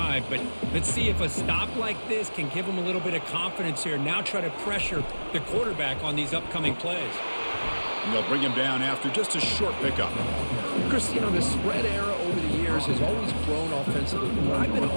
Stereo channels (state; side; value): inverted; both; correlation -1.00